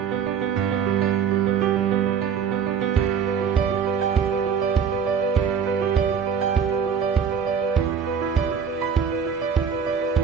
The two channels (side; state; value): left; quieter; 7.0 dB